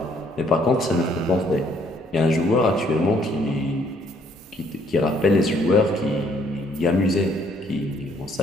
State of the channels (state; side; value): normal; both; correlation 0.65